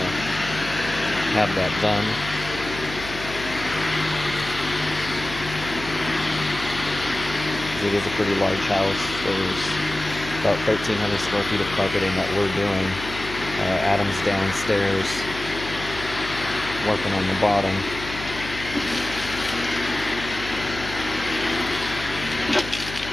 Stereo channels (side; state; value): left; noise; hum, 11 dB below the sound